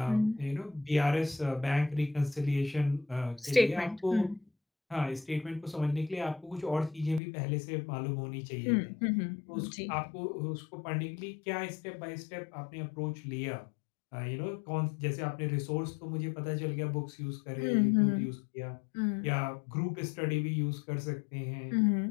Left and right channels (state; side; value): drops out; right; at 7.2 s